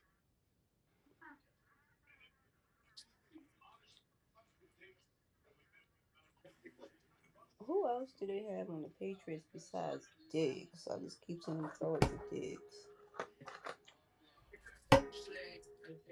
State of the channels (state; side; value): identical; both; correlation 1.00